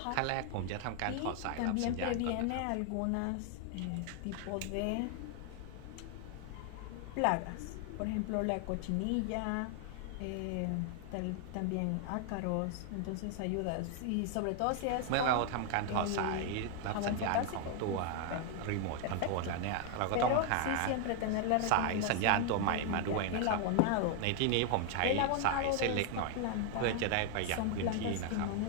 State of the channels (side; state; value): both; different; correlation 0.00